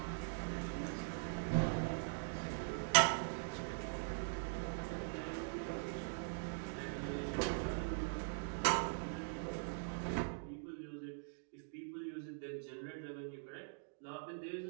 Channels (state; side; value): silent; left; digital silence